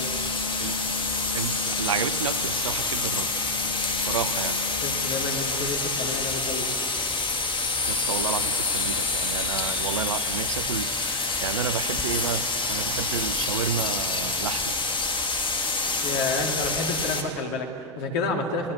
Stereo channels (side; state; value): both; normal; correlation -0.03